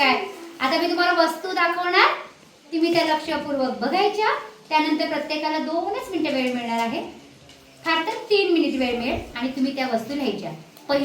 आता मी तुम्हाला वस्तू दाखवणार, तुम्ही त्या लक्षपूर्वक बघायच्या. त्यानंतर प्रत्येकाला 2च मिनिटं वेळ मिळणार आहे. फार तर 3 मिनिट वेळ मिळेल आणि तुम्ही त्या वस्तू लिहायच्या.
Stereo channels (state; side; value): identical; both; correlation 1.00